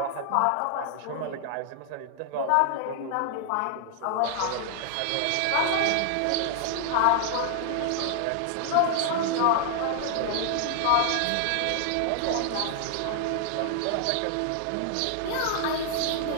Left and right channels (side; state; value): both; different; correlation 0.00